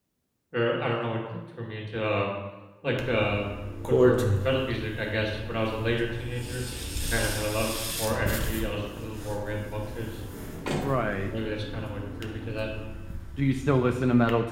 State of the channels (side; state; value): both; identical; correlation 1.00